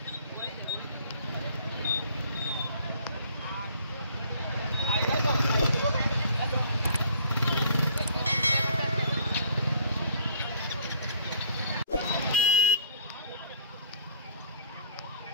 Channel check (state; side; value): inverted; both; correlation -0.56